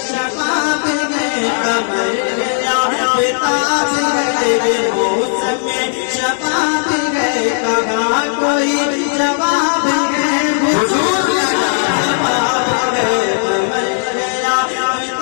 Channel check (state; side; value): silent; right; digital silence